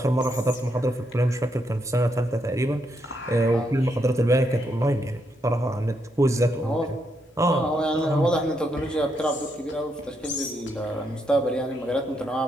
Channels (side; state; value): both; normal; correlation 0.79